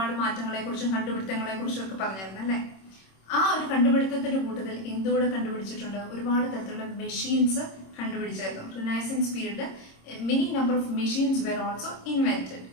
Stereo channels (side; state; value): right; late; 26 ms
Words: മാറ്റങ്ങളെ കുറിച്ചും കണ്ടുപിടുത്തങ്ങളെ കുറിച്ചും ഒക്കെ പറഞ്ഞിരുന്നു അല്ലേ. ആ ഒരു കണ്ടുപിടുത്തത്തിന്റെ കൂട്ടത്തിൽ എന്തുകൂടെ കണ്ടുപിടിച്ചിട്ടുണ്ട്? ഒരുപാട് തരത്തിലുള്ള മെഷീൻസ് കണ്ടുപിടിച്ചായിരുന്നു. റിനൈസൻസ് പീരീഡിൽ many number of machines were also invented.